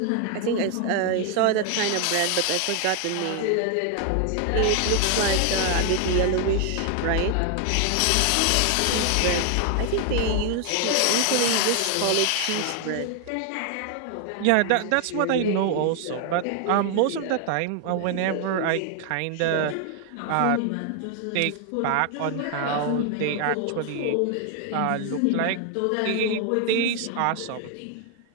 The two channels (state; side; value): different; both; correlation 0.00